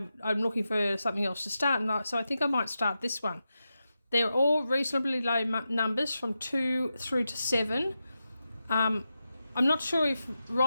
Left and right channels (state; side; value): inverted; both; correlation -0.90